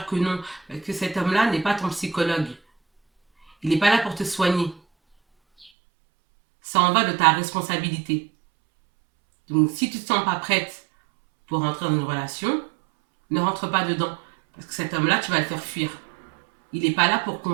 que non, que cet homme-là n'est pas ton psychologue. Il n'est pas là pour te soigner. Ça en va de ta responsabilité. Donc si tu ne te sens pas prête pour rentrer dans une relation, ne rentre pas dedans. Parce que cet homme-là, tu vas le faire fuir. Il n'est pas là pour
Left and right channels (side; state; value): left; drops out; at 5.7 s